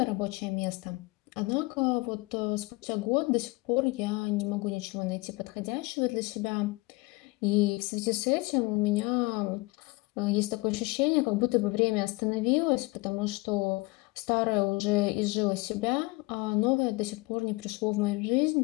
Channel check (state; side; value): quieter; right; 24.5 dB